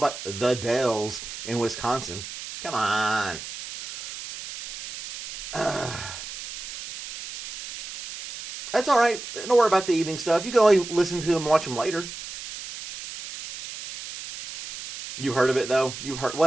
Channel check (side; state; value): right; noise; hiss, 10 dB below the sound